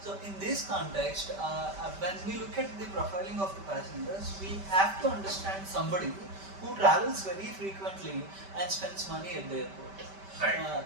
in this context, when we look at the profiling of the passengers, we have to understand somebody who travels very frequently and spends money at the airport. Right.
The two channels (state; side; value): late; left; 5.1 ms